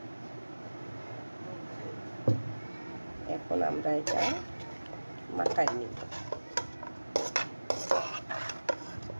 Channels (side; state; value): both; inverted; correlation -1.00